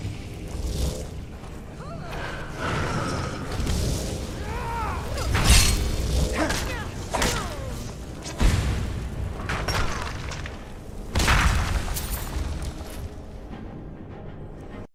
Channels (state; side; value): identical; both; correlation 1.00